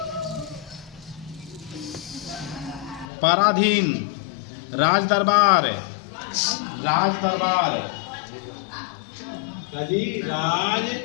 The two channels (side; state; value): right; drops out; at 3.1 s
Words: पराधीन, राज दरबार, राज दरबार, राज